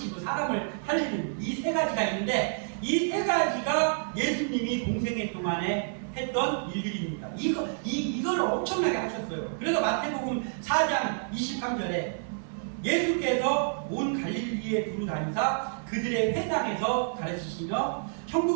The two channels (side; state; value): left; silent; 57 dB below the other